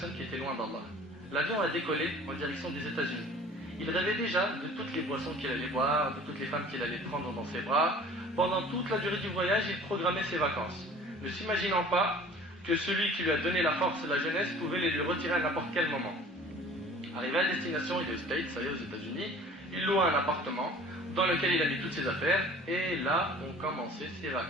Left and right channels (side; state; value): both; normal; correlation 0.47